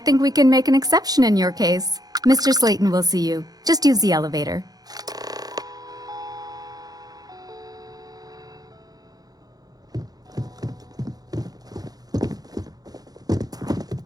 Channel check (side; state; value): left; late; 0.19 ms